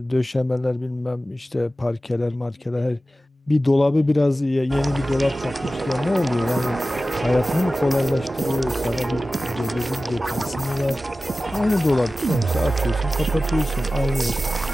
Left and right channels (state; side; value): normal; both; correlation 0.95